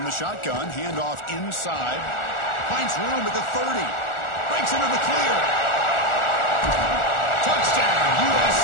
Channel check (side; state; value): right; late; 1.4 ms